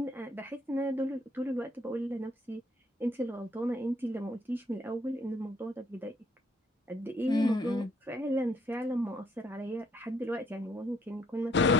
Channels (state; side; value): normal; both; correlation 0.66